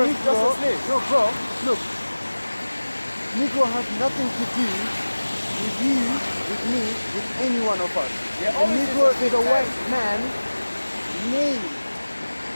is just a slave. No, bro, look. Negro has nothing to do with you, with me, with any one of us. Yeah, a Negro is a white man named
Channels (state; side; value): inverted; both; correlation -1.00